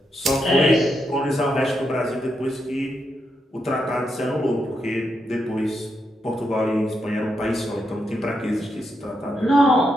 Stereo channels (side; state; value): both; normal; correlation 0.82